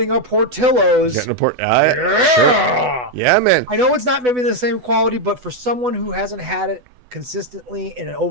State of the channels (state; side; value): late; left; 8.1 ms